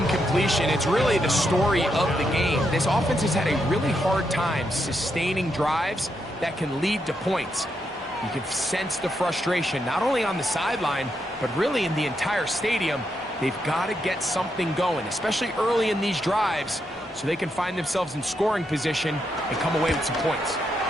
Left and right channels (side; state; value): both; normal; correlation 0.81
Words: it's really the story of the game. This offense has had a really hard time sustaining drives that can lead to points. You can sense the frustration, not only on the sideline, but really in the entire stadium. They've got to get something going, especially early in these drives, so they can find themselves in scoring position and come away with some points.